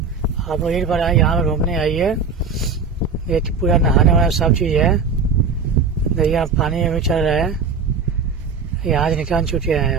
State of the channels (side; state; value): left; quieter; 5.1 dB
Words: लोग एक बार आए यहाँ पे घूमने आइए। ये पूरा नहाने वाला सब चीज है। देखिए पानी में चल रहा है। यहाँ से निकाल चुके हैं।